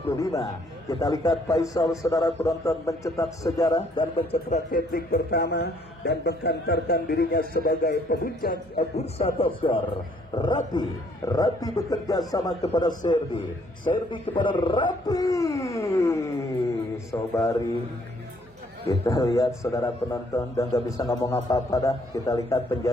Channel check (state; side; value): noise; right; hum, 29 dB below the sound